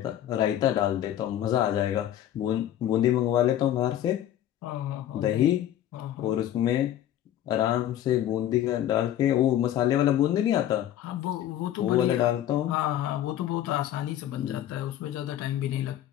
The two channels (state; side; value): quieter; right; 11.8 dB